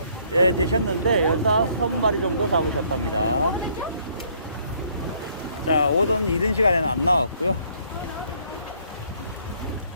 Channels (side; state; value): both; inverted; correlation -0.64